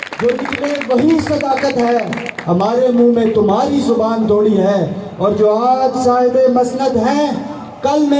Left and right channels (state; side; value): identical; both; correlation 1.00